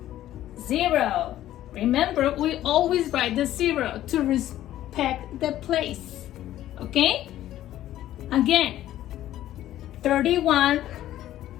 0. Remember, we always write the 0 to respect the place. Okay? Again, 31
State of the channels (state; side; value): quieter; right; 13.2 dB